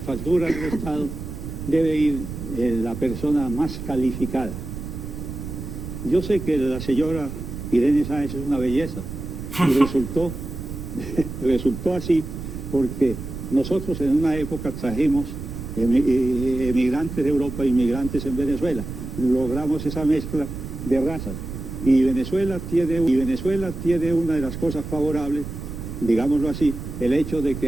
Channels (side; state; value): right; noise; rumble, 8 dB below the sound